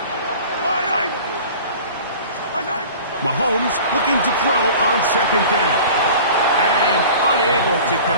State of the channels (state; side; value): inverted; both; correlation -0.41